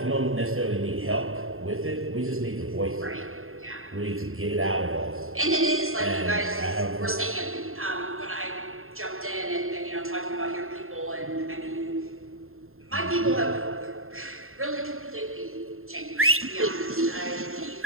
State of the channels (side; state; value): left; late; 0.61 ms